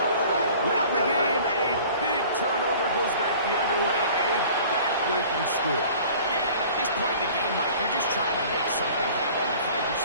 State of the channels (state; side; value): inverted; both; correlation -0.47